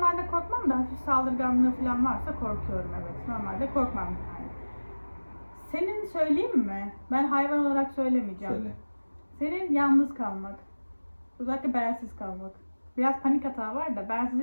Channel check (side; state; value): both; inverted; correlation -1.00